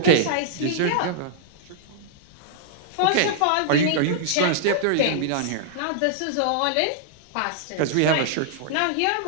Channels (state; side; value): different; both; correlation -0.01